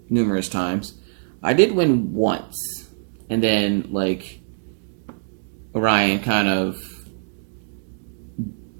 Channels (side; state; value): left; silent; digital silence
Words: numerous times. I did win once. And then, like, Orion kind of...